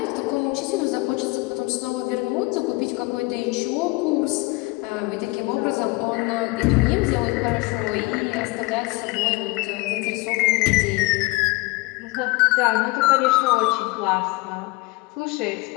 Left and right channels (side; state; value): right; quieter; 23.5 dB